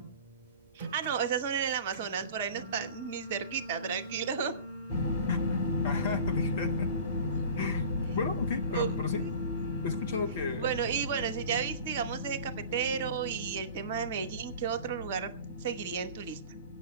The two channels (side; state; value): both; inverted; correlation -0.40